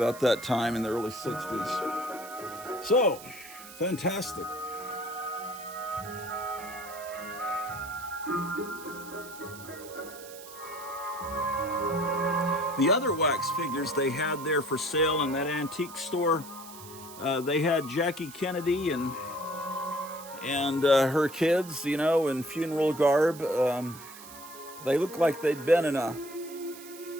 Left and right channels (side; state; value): right; noise; hiss, 16 dB below the sound